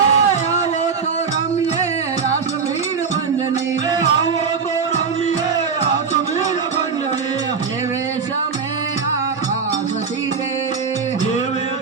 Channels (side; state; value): left; quieter; 5.6 dB